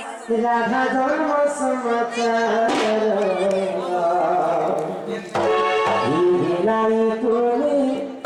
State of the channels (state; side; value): identical; both; correlation 1.00